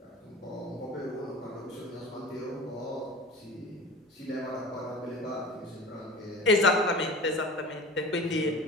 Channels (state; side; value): normal; both; correlation 0.37